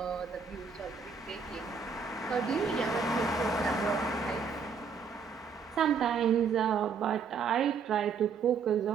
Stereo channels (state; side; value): quieter; left; 5.6 dB